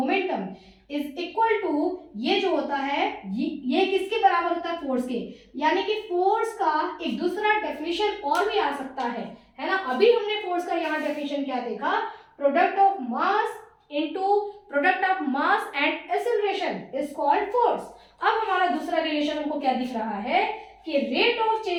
is equal to, ये जो होता है ये किसके बराबर होता है, फोर्स के। यानी कि फोर्स का एक दूसरा डेफिनेशन और भी आ सकता है ना। अभी हमने फोर्स का यहाँ डेफिनेशन क्या देखा, product of mass into product of mass and acceleration is called force. अब हमारा दूसरा रिलेशन हमको क्या दिख रहा है कि rate of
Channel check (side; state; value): both; identical; correlation 1.00